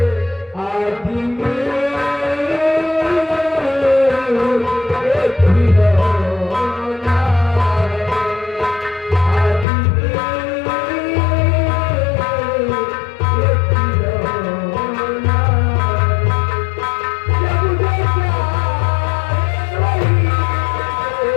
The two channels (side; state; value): right; drops out; at 9.7 s